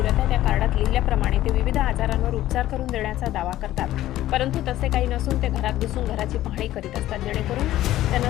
आहेत. त्या कार्डात लिहिल्याप्रमाणे ते विविध आजारांवर उपचार करून देण्याचा दावा करतात, परंतु तसे काही नसून ते घरात बसून घराची पाहणी करीत असतात, जेणेकरून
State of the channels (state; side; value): quieter; right; 14.3 dB